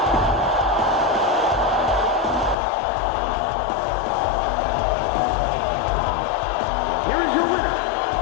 Here is your winner.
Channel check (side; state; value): right; drops out; at 2.6 s